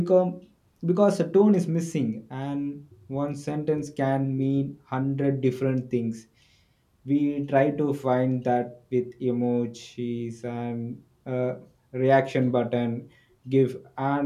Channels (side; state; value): both; identical; correlation 1.00